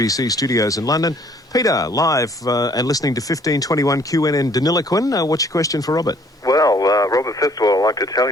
studios in London. Peter, live and listening to 1521 QNN Deniliquin. What's your question for Robert? Well, Robert, first of all, I'd like to tell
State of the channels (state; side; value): normal; both; correlation 0.60